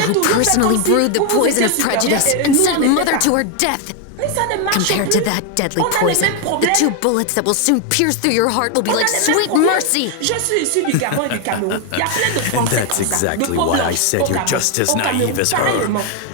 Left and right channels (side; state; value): both; different; correlation 0.01